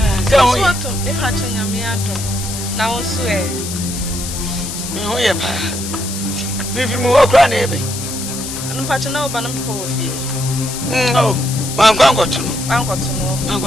So, what? If I change your meadow, now swear. Oh, yeah, if you move around, I'm patching over and poor fee. Oh, I'm going to know. I'm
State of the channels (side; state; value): left; noise; hiss, 7 dB below the sound